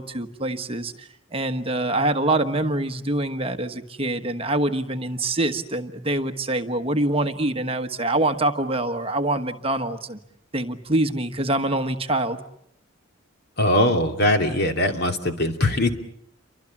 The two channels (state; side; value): normal; both; correlation 0.17